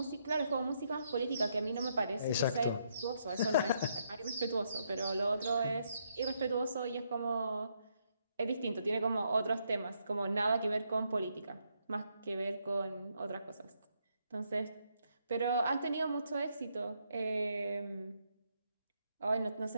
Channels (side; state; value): both; inverted; correlation -0.76